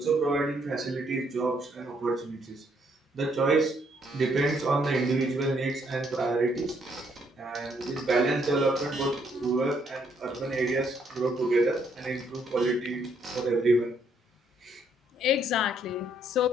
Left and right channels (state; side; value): normal; both; correlation 0.71